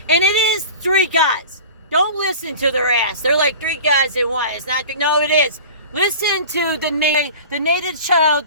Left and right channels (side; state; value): both; inverted; correlation -0.38